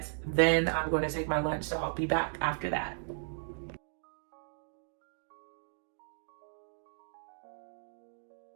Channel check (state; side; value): silent; left; digital silence